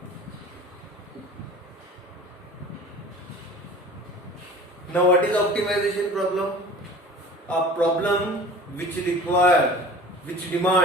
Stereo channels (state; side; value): normal; both; correlation 0.42